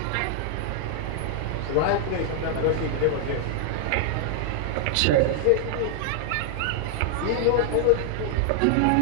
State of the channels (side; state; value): both; different; correlation 0.00